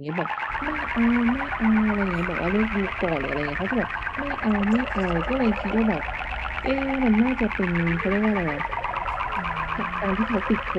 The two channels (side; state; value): both; identical; correlation 1.00